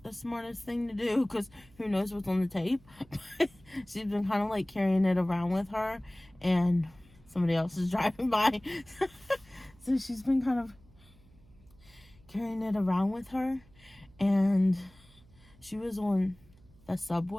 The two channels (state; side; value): noise; right; hum, 27 dB below the sound